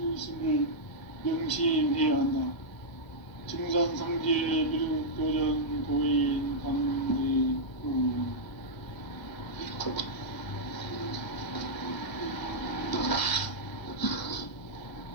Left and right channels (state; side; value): late; right; 1.4 ms